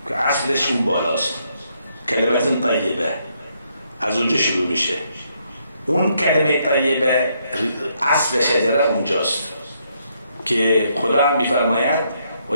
که اصلش اون بالاست. کلمت طیبه از اونجا شروع میشه. اون کلمه طیبه اصل شجره اونجاست که خدا هم میفرماید و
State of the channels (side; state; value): both; inverted; correlation -0.74